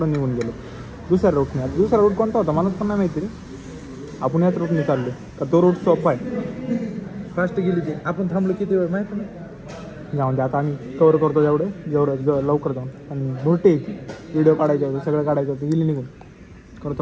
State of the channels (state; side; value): identical; both; correlation 1.00